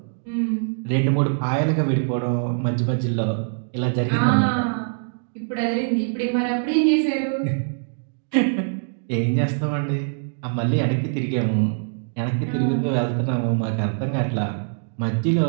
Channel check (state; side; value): silent; left; digital silence